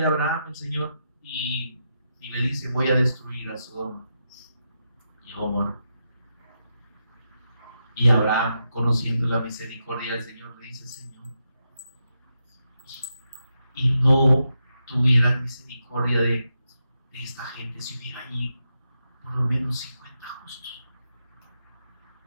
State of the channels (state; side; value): inverted; both; correlation -0.85